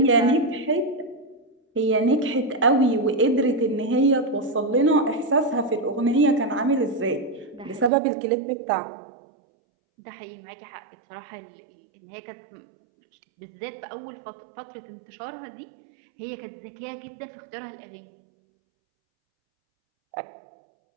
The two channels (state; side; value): drops out; left; at 7.9 s